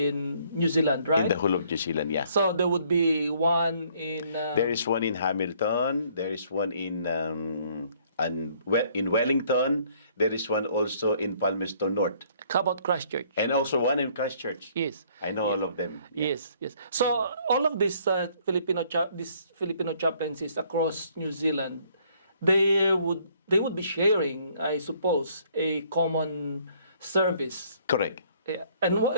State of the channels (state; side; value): inverted; both; correlation -0.63